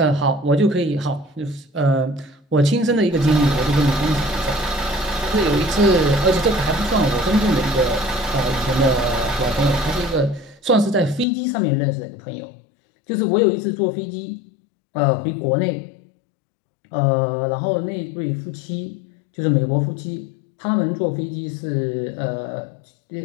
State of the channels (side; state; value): right; drops out; at 11.2 s